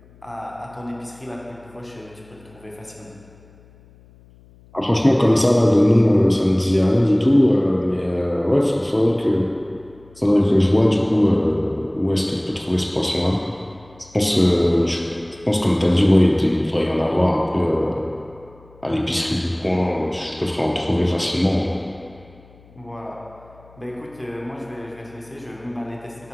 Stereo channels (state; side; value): noise; left; hum, 26 dB below the sound